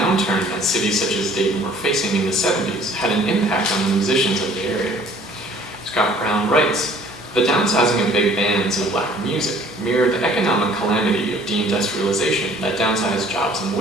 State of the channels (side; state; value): both; normal; correlation 0.54